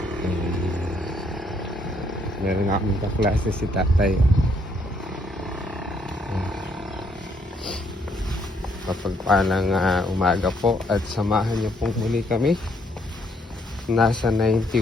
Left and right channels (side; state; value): both; normal; correlation 0.70